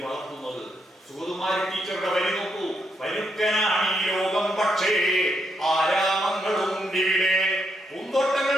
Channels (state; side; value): normal; both; correlation 0.79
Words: വളർത്തുന്നത് സുഗതകുമാരി ടീച്ചറുടെ വരി നോക്കൂ. പരുക്കനാണ് ഈ ലോകം പക്ഷേ ആരാമങ്ങളുണ്ടിവിടെ,